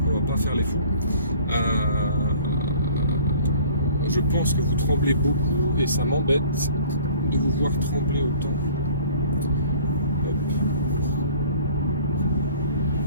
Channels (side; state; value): both; inverted; correlation -0.50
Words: on va pas faire les fous. Je pense que vous tremblez beaucoup et ça m'embête de vous voir trembler autant.